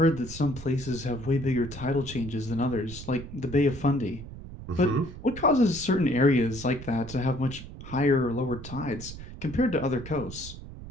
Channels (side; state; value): right; noise; rumble, 13 dB below the sound